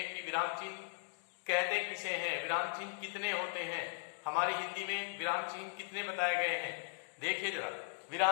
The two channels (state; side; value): silent; right; digital silence